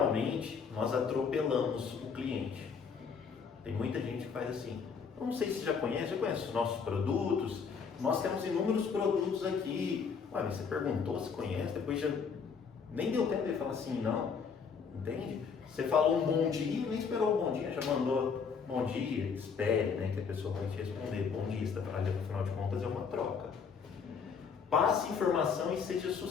nós atropelamos o cliente. Tem muita gente que faz assim: eu não sei se já conhece os nossos produtos, nós temos inúmeros produtos aqui. Ué, você perguntou se conhece, depois já nem deu tempo de falar assim, não, entende? Você falou um bom dia, nem esperou um bom dia, já mandou bom dia, espere, né, que a pessoa vai te responder. Bom dia, afinal de contas é uma troca. Passe informação e seja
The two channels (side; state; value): right; quieter; 5.9 dB